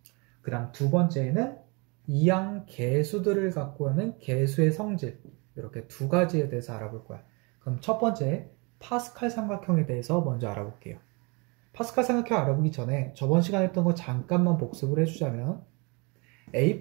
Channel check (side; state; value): left; quieter; 30.0 dB